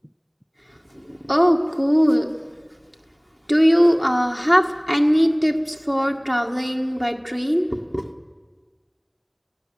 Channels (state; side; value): identical; both; correlation 1.00